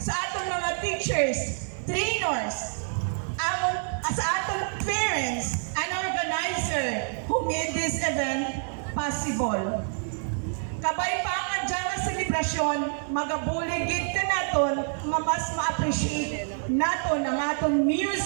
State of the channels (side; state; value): left; silent; digital silence